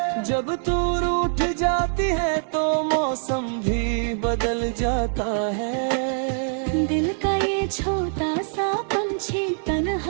जब तू रूठ जाती है तो मौसम भी बदल जाता है। दिल का ये छोटा सा पंछी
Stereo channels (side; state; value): left; silent; digital silence